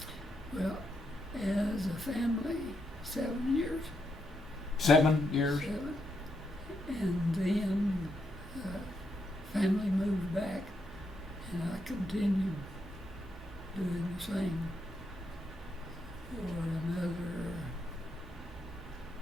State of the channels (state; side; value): normal; both; correlation 0.81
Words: Well, as a family, 7 years. 7 years? 7. And then family moved back, and I continued doing the same for another